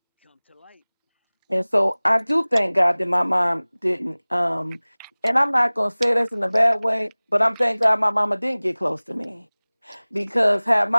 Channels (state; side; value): inverted; both; correlation -1.00